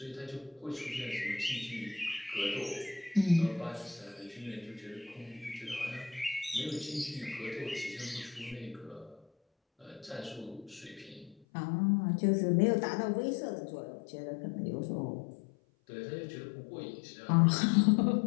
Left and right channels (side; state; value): right; drops out; at 11.4 s